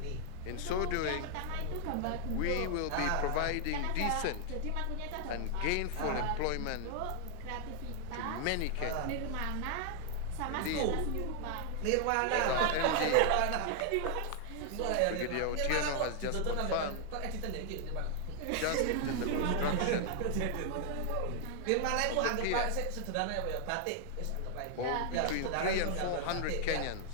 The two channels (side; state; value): both; different; correlation 0.00